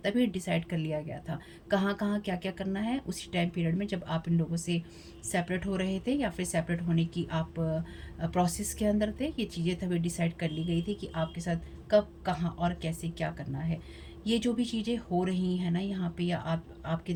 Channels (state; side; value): identical; both; correlation 1.00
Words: डिसाइड कर लिया गया था कहाँ कहाँ क्या क्या करना है उसी टाइम पीरियड में, जब आप इन लोगों से सेपरेट हो रहे थे या फिर सेपरेट होने की आप प्रोसेस के अंदर थे। ये चीज़ें तभी डिसाइड कर ली गई थी कि आपके साथ कब, कहाँ और कैसे क्या करना है। ये जो भी चीज़ें हो रही हैं ना यहाँ पे, या आपकी